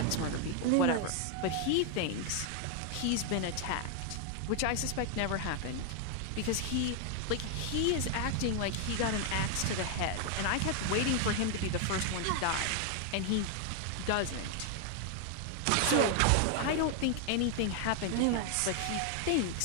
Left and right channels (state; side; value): different; both; correlation 0.00